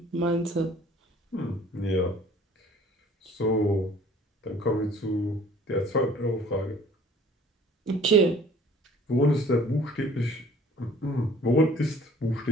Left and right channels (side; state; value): both; normal; correlation 0.52